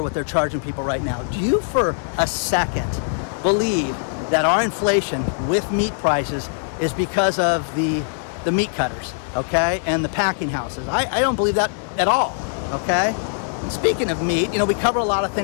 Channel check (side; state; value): right; silent; digital silence